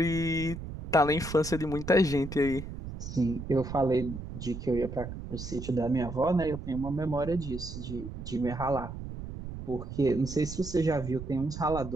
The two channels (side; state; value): right; noise; rumble, 9 dB below the sound